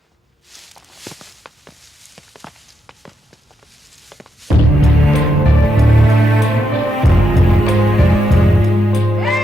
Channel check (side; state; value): both; normal; correlation 0.82